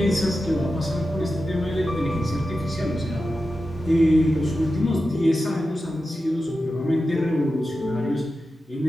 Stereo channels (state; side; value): normal; both; correlation 0.91